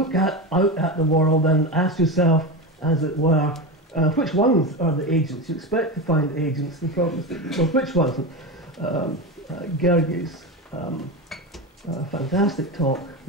out at the world and ask yourself, as it were, which ones are the agents? You expect to find agents and problems, well, which ones? Gergie's fantastic talk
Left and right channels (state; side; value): normal; both; correlation 0.19